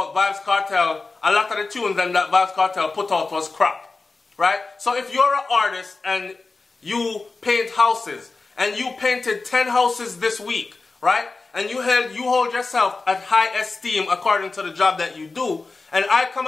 Vybz Kartel, a lot of the tunes that Vybz Kartel put out was crap. Right? So if you're an artist and you paint houses, and you painted 10 houses this week, right? And you hold yourself at high esteem according to the job that you do, and I come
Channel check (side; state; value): right; quieter; 3.8 dB